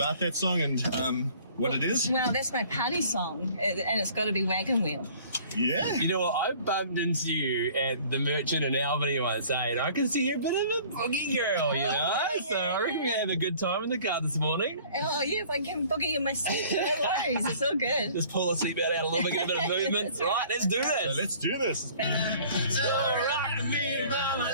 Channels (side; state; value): both; inverted; correlation -0.52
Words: that song and what it is? Well, that's my party song, and it's got to be Wagon Wheel. Yeah. You know what? I bumped into you at the Merchant in Albany once, and I can see you're a bit of a boogie girl, you know? So I reckon we're going to have a good time in the car this morning. Oh, yeah, if I can boogie in my seat, no worries. It's all good. Just pull the seatbelt out a little bit, get a bit of movement. Right, let's do So this. let's do this. So rock me, mama,